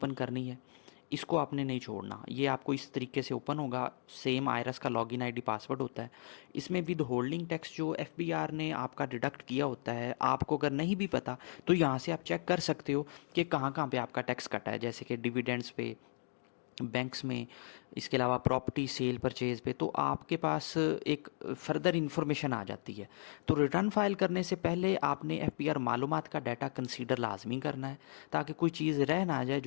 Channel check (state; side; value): silent; right; digital silence